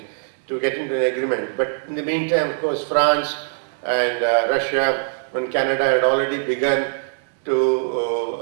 to get into an agreement. But in the meantime, of course, France and Russia and Canada had already begun to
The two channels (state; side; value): silent; left; 64 dB below the other